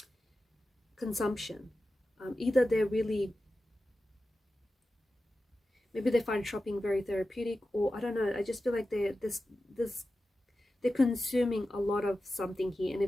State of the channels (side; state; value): both; normal; correlation 0.93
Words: consumption. Either they're really, maybe they find shopping very therapeutic, or I don't know. I just feel like they're consuming a lot of something here, and